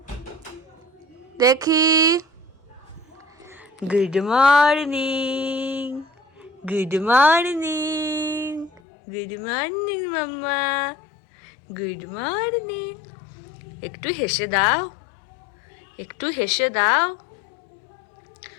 দেখি। Good morning, good morning, good morning মাম্মা, গুড মর্নিং। একটু হেসে দাও, একটু হেসে দাও।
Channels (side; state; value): right; drops out; at 8.8 s